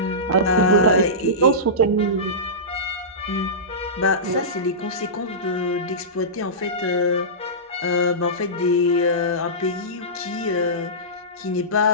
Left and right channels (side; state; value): both; normal; correlation -0.19